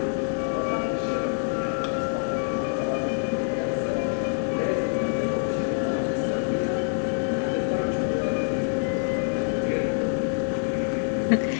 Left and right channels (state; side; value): silent; right; 57 dB below the other